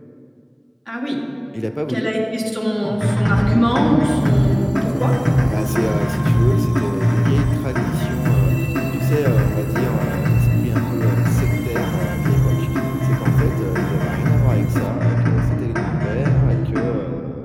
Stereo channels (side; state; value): both; identical; correlation 1.00